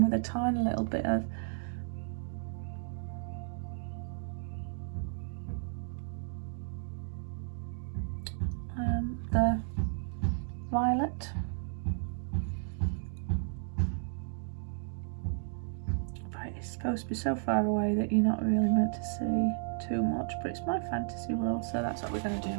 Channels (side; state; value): left; silent; digital silence